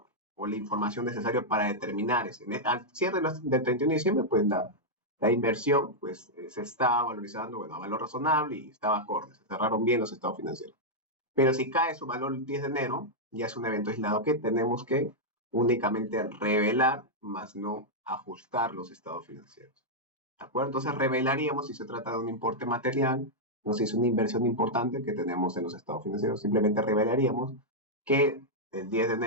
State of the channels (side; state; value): both; normal; correlation -0.05